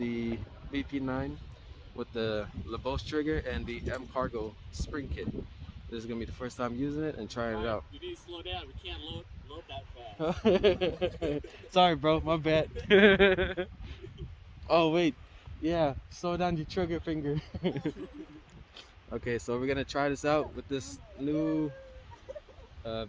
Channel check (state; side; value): identical; both; correlation 1.00